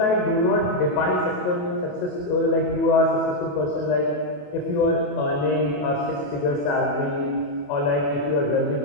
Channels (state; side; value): late; right; 28 ms